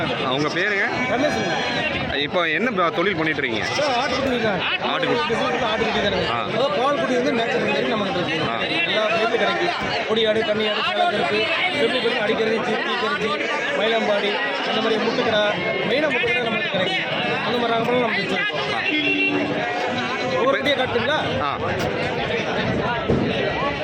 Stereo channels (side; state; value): both; identical; correlation 1.00